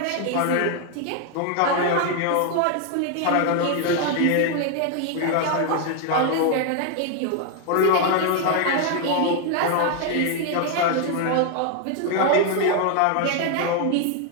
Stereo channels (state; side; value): different; both; correlation 0.00